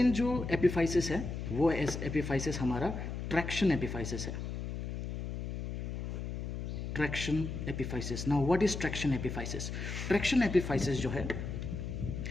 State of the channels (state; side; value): noise; left; hum, 5 dB below the sound